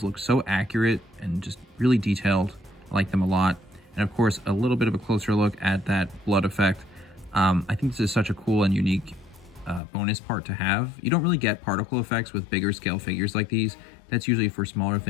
looks so accurate and just really detailed. I like them a lot. And of course, a little bit of a closer look at that blood effect. I think this is such a cool and unique bonus part to have. You don't really get particle effects with bigger scale figures like these. That's usually for smaller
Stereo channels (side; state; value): right; drops out; at 9.8 s